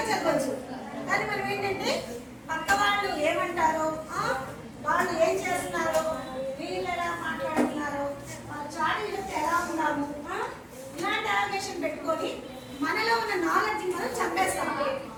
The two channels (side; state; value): both; identical; correlation 1.00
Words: చదవచ్చు. కానీ మనం ఏంటంటే పక్క వాళ్ళు ఏమంటారో, వాళ్ళు ఏం చేస్తున్నారో, వీళ్ళు ఎలా మాట్లాడుతున్నారో, వాళ్ళ చాడీలతో ఎలా ఉన్నాము, ఇలాంటి అవకాశం పెట్టుకొని మనలో ఉన్న నాలెడ్జ్ మనం చంపేస్తాము.